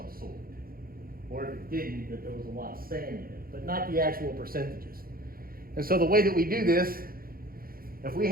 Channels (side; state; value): left; late; 0.42 ms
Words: sort. Or if it didn't, that there was a lot of sand in it, but not the actual percentages. And so the way that we do this, if we